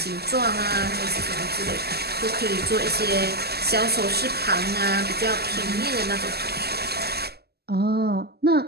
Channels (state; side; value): late; left; 0.46 ms